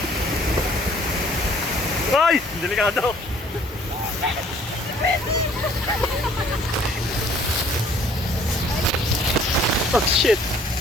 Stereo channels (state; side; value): normal; both; correlation 0.57